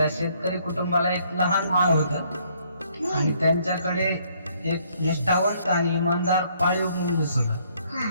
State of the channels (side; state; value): both; inverted; correlation -0.66